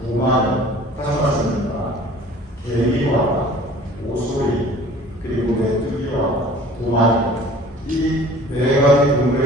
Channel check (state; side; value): normal; both; correlation 0.48